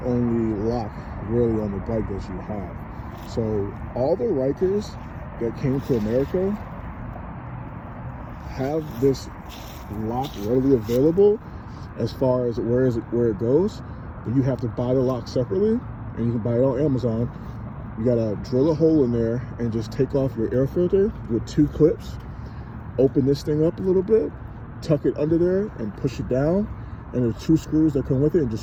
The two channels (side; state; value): both; identical; correlation 1.00